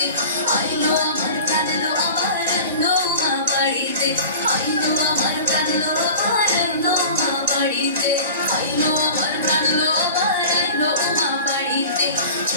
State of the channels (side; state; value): both; inverted; correlation -0.38